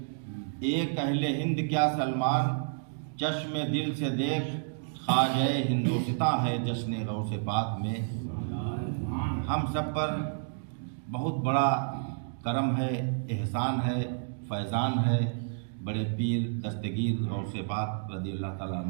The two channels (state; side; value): silent; left; digital silence